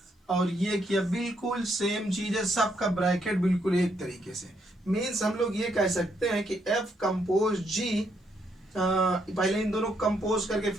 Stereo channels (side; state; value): both; normal; correlation 0.74